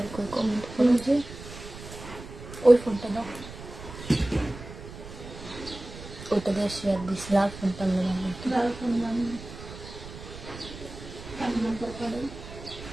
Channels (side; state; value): right; noise; rumble, 13 dB below the sound